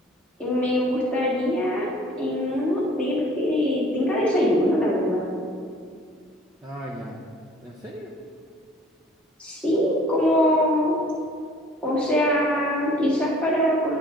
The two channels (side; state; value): both; normal; correlation 0.53